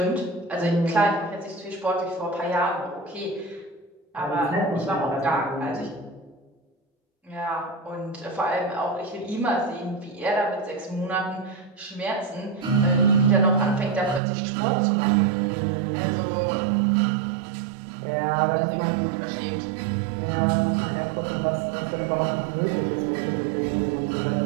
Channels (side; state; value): left; drops out; at 14.2 s